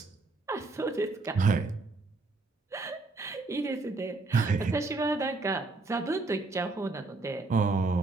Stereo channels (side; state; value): left; quieter; 3.5 dB